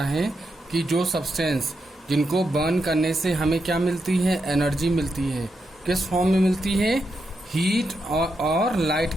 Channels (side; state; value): both; normal; correlation 0.84